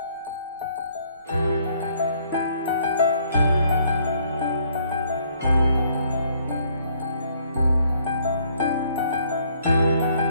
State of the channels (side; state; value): both; inverted; correlation -0.65